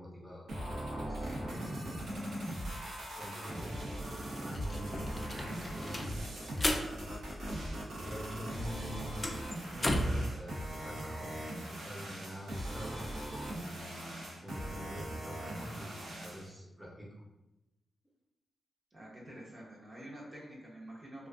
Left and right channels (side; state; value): both; normal; correlation 0.90